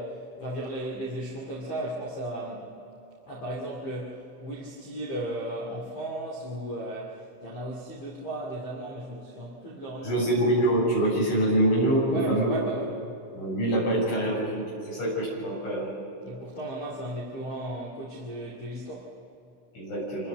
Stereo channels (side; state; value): right; late; 16 ms